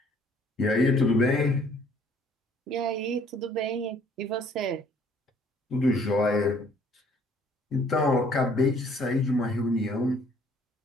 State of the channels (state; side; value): normal; both; correlation 0.60